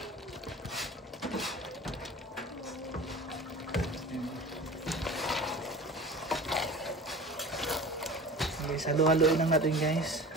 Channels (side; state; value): both; normal; correlation 0.38